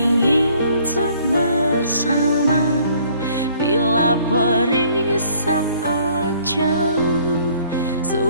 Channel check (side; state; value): both; inverted; correlation -0.60